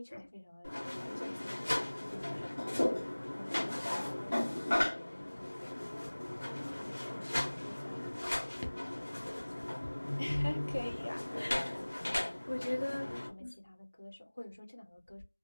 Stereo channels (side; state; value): both; inverted; correlation -1.00